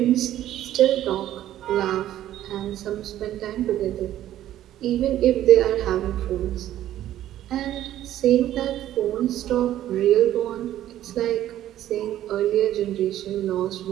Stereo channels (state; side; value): quieter; left; 12.7 dB